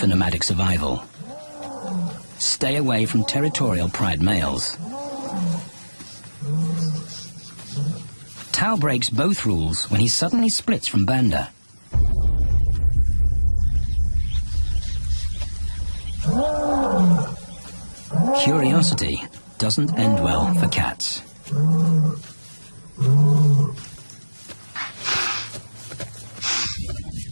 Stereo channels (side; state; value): both; inverted; correlation -1.00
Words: nomadic survival: stay away from territorial pride males. Tao breaks both rules when he suddenly splits from Banda. Curiosity doesn't end well for cats.